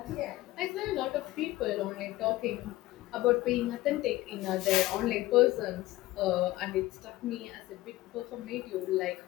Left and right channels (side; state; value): right; quieter; 17.3 dB